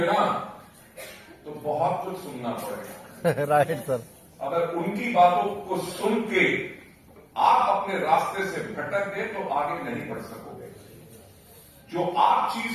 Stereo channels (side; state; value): both; identical; correlation 1.00